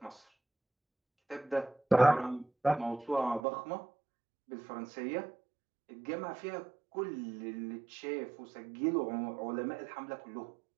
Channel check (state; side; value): drops out; left; at 3.4 s